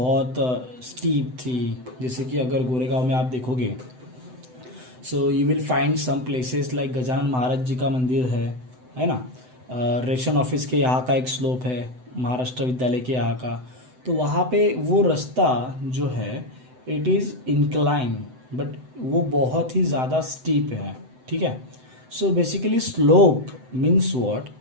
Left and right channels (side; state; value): left; late; 7.9 ms